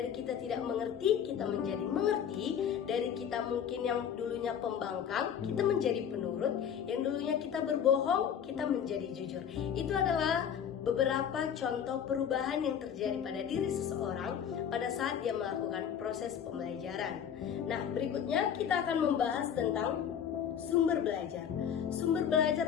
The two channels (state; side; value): quieter; right; 8.4 dB